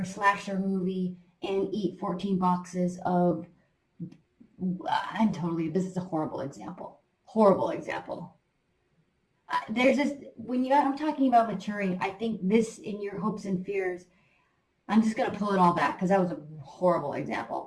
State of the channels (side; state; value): both; identical; correlation 1.00